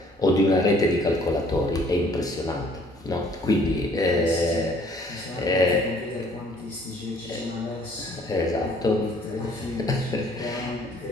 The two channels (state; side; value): normal; both; correlation 0.59